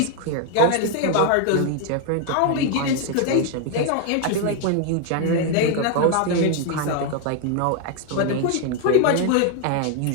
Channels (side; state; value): both; different; correlation 0.00